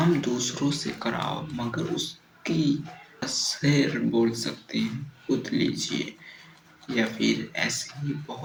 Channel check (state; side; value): identical; both; correlation 1.00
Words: दूसरों से कराओ मगर उसकी शेर बोल सकते हैं खुद लीजिए। या फिर ऐसे ही